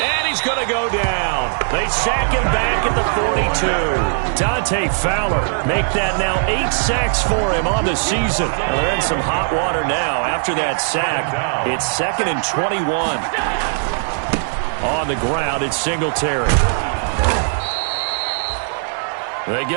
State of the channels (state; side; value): silent; left; 60 dB below the other